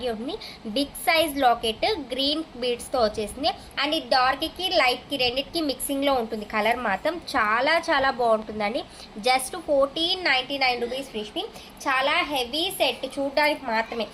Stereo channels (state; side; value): identical; both; correlation 1.00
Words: ఉంటుంది. బిగ్ సైజ్ లాకెట్ గ్రీన్ బీడ్స్తో వచ్చేసింది. అండ్ ఈ డార్క్కి లైట్కి రెండింటికి మిక్సింగ్లో ఉంటుంది. కలర్ మాత్రం చాలా చాలా బాగుంటుందండి. Just 1499 rupees free shipping. చాలా హెవీ సెట్, చూడడానికి మాత్రమే,